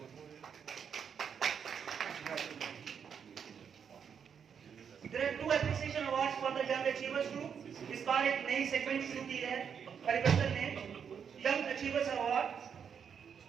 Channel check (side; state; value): left; quieter; 7.3 dB